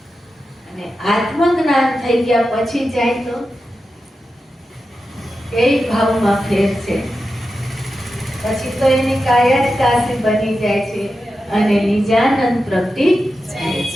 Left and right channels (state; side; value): normal; both; correlation 0.91